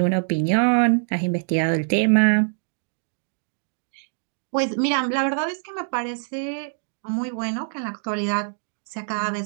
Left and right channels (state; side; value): silent; left; digital silence